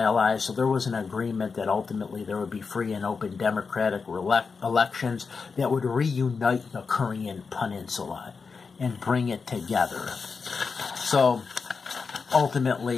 so there was an agreement that ultimately there would be free and open democratic elections that would reunite the Korean Peninsula and bring it together. So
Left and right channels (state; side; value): quieter; right; 5.0 dB